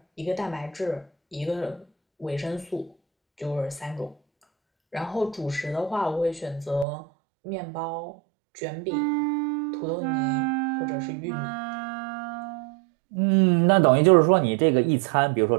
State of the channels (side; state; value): left; drops out; at 6.9 s